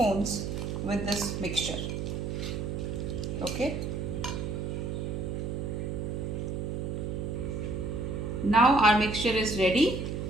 with this mixture. Okay. Now our mixture is ready.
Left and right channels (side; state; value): right; noise; hum, 3 dB below the sound